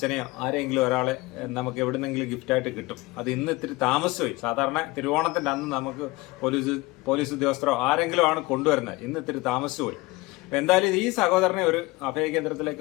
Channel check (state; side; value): quieter; right; 21.8 dB